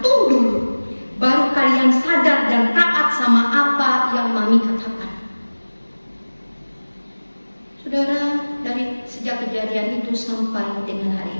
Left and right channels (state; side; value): inverted; both; correlation -1.00